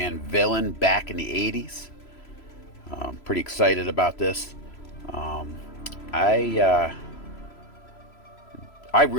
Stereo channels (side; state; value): right; late; 3.0 ms